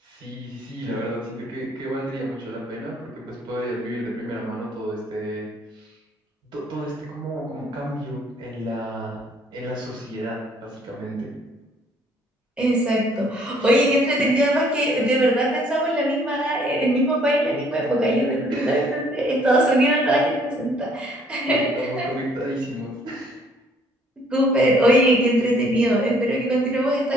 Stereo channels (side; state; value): both; normal; correlation 0.62